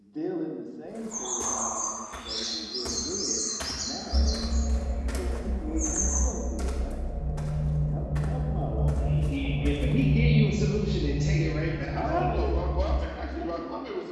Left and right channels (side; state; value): both; identical; correlation 1.00